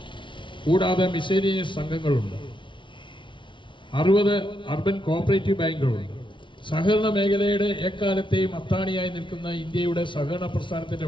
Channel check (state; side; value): late; right; 0.24 ms